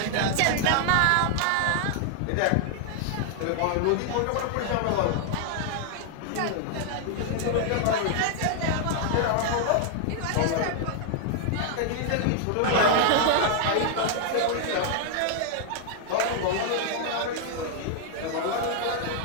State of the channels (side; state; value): both; different; correlation 0.00